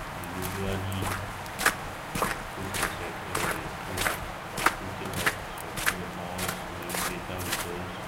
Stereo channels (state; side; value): identical; both; correlation 1.00